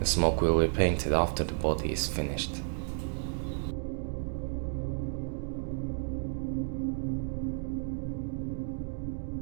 smoke will be painted after the body is finished.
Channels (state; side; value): silent; left; digital silence